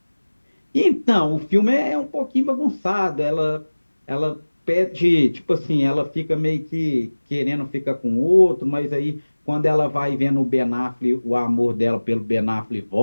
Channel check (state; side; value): inverted; both; correlation -1.00